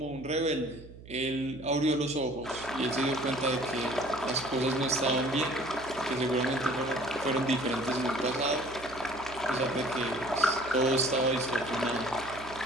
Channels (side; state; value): right; noise; hum, 17 dB below the sound